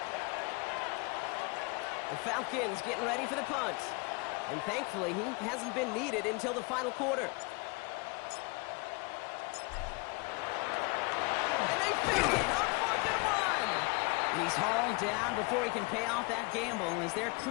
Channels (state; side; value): quieter; right; 28.7 dB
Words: The Falcons getting ready for the punt. And thankfully, he hasn't been needed until the final quarter. And they fake it on 4th and 1. He's hauled down before he can pay off that gamble as their